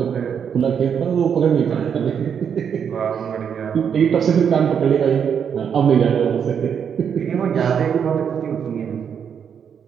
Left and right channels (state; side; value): quieter; left; 7.6 dB